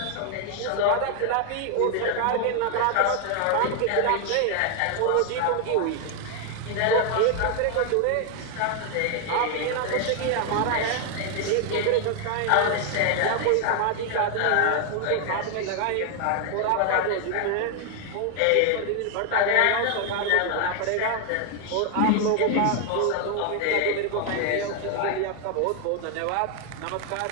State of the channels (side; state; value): both; different; correlation 0.00